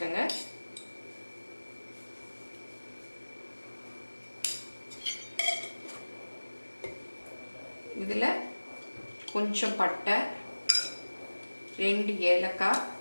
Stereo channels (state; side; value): inverted; both; correlation -1.00